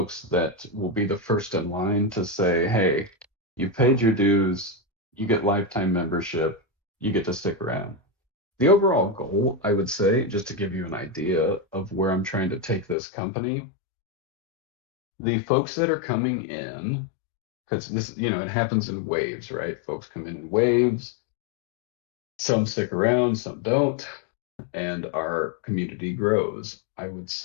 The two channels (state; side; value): drops out; right; at 13.0 s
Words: that will be the first in line to say, hey, you paid your dues, you get lifetime membership, you get to stick around. The overall goal, I would say, just to give you an idea of where I'm trying to take this company, the folks that are coming in, because this, it happens in waves, right? Folks come in waves, some stick around, some don't, and our community grows. I would